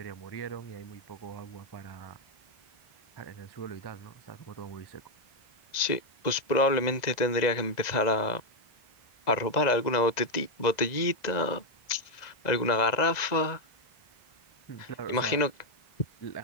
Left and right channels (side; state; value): right; late; 2.0 ms